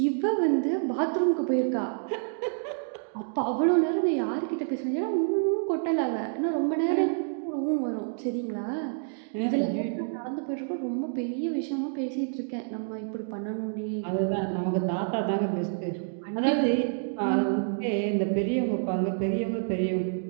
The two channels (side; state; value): left; silent; digital silence